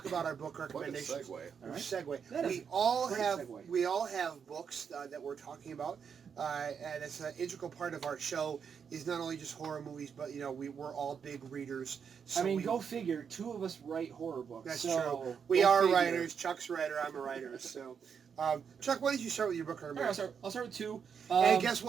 about our book recommendations. What a segue. Right. We all have books that we're talking about, and it's an integral part of our show. Is not only just horror movies, but we're all big readers. So go figure. Two of us write horror books. That's so true. We are figure. writers. Chuck's a writer. I'm a writer. So, Chuck, why don't you start with your book recommendation? All right, I'll start with two. And guess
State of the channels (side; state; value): left; quieter; 6.9 dB